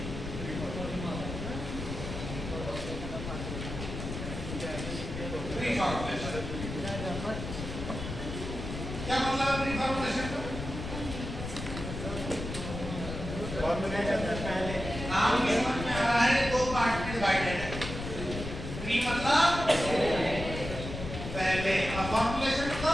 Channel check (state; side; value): noise; left; rumble, 7 dB below the sound